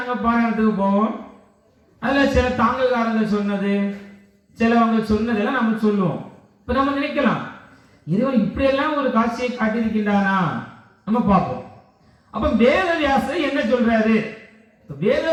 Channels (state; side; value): identical; both; correlation 1.00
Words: பாராயணத்துக்கு போவோம். அதுல சில தாங்கல்காரங்க சொன்னது, சிலவங்க சொன்னதெல்லாம் நம்ம சொல்லுவோம். இப்ப நம்ம நினைக்கலாம், இறைவன் இப்படியெல்லாம் ஒரு காட்சியை காட்டியிருக்கின்றானா நம்ம பார்ப்போம். அப்ப வேதவியாசர் என்ன சொல்றாரு?